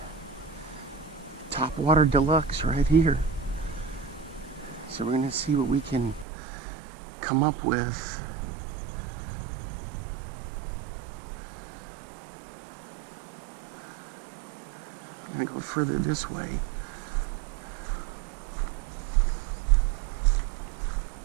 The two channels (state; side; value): drops out; left; at 6.2 s